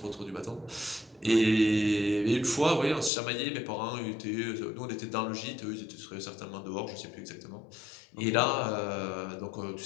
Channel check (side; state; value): right; drops out; at 3.1 s